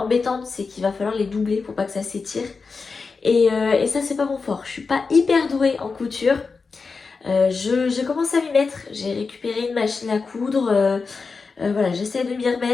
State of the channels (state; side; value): quieter; right; 4.6 dB